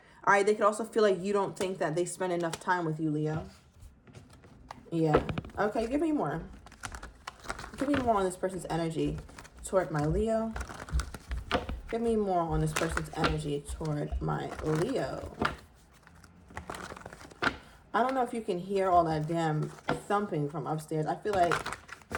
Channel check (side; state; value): both; identical; correlation 1.00